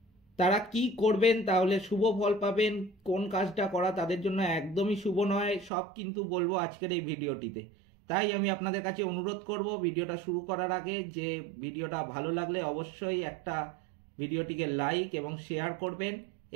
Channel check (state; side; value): drops out; left; at 5.7 s